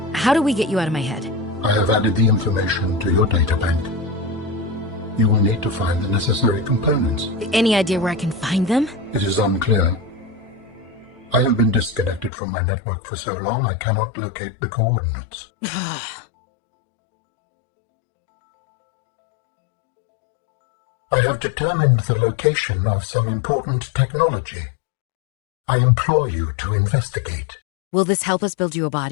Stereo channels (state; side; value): drops out; right; at 12.3 s